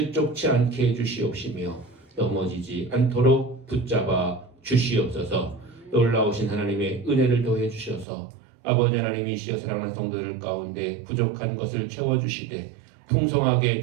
않게 해주시옵시며 넘어지지 않도록 붙잡아 주시옵소서. 놀라우신 하나님의 은혜를 더해 주셔서 아버지 하나님이시여 사랑하는 성도들 가운데 부족한 것을 채워주시되 풍성하게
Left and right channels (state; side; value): drops out; left; at 8.1 s